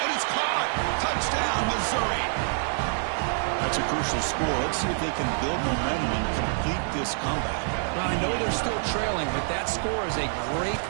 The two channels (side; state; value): left; silent; digital silence